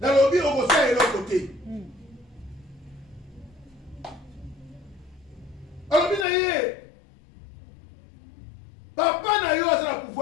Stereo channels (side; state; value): right; drops out; at 6.2 s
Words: lobi okosala eloko te. Alobi na ye papa na yo aza na